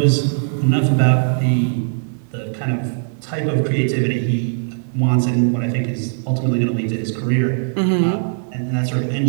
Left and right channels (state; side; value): silent; left; digital silence